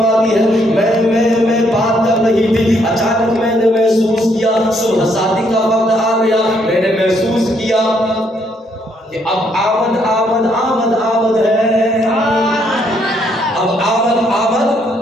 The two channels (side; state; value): both; normal; correlation 0.71